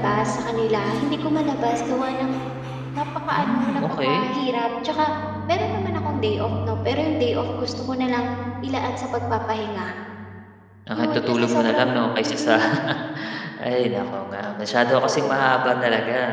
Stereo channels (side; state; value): both; identical; correlation 1.00